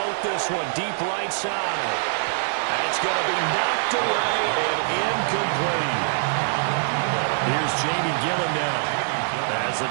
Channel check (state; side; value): silent; left; 56 dB below the other